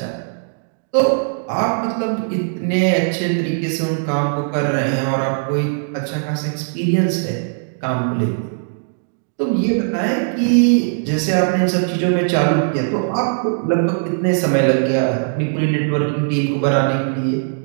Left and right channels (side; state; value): left; silent; digital silence